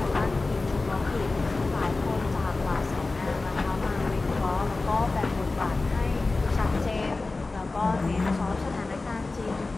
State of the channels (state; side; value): quieter; right; 3.5 dB